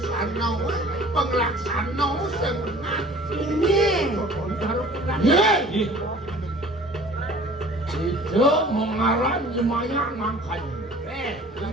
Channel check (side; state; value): both; normal; correlation 0.48